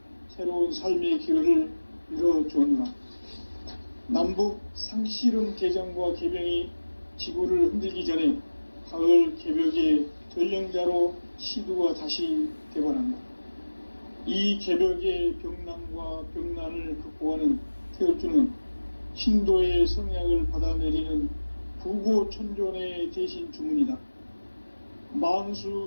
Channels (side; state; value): both; inverted; correlation -1.00